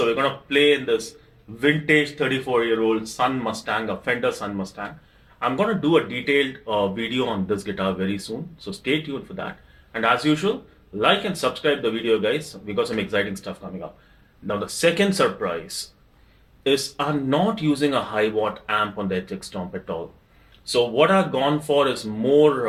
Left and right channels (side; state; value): both; identical; correlation 1.00